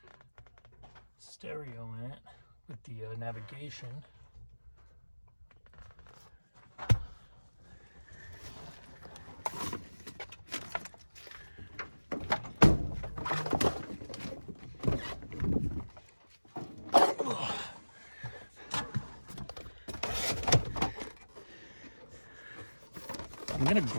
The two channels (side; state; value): both; inverted; correlation -1.00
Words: stereo in it with the navigation. I'm gonna